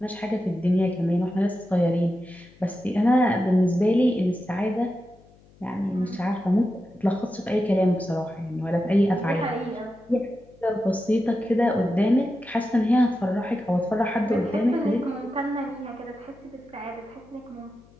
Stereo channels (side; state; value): left; noise; hum, 28 dB below the sound